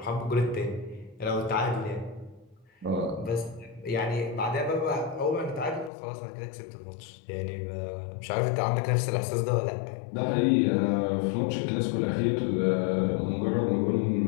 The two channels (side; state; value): right; drops out; at 5.9 s